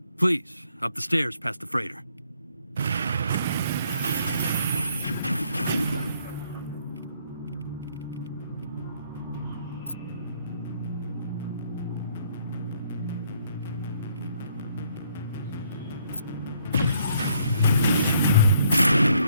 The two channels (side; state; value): both; inverted; correlation -0.68